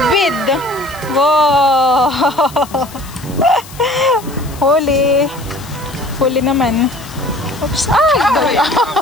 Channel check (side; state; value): left; noise; hiss, 19 dB below the sound